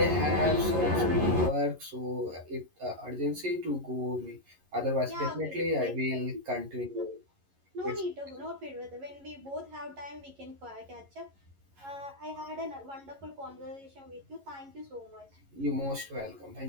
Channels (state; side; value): late; left; 11 ms